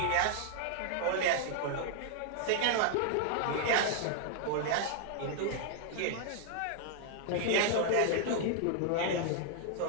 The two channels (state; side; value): different; both; correlation -0.01